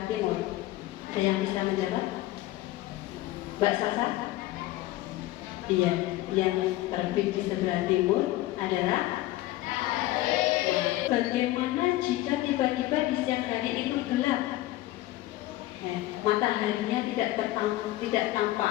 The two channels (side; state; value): right; quieter; 16.6 dB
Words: timur? Ada yang bisa menjawab? Mbak Sasa? Iya, yang terbit di sebelah timur adalah matahari. Bagaimana jika tiba-tiba di siang hari itu gelap? Mataharinya tidak